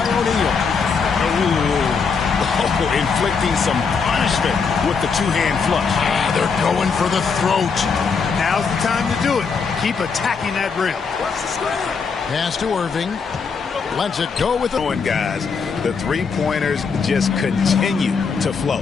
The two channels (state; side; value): quieter; right; 5.4 dB